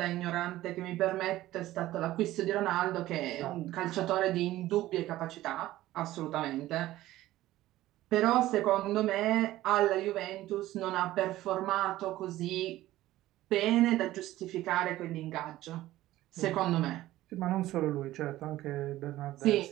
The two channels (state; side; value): quieter; left; 15.6 dB